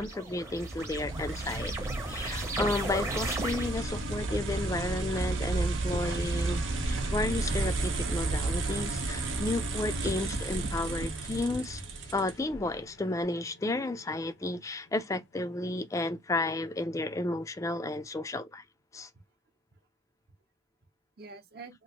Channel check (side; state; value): both; normal; correlation 0.65